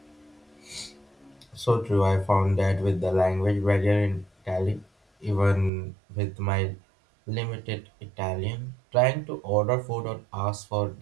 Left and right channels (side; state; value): left; drops out; at 5.7 s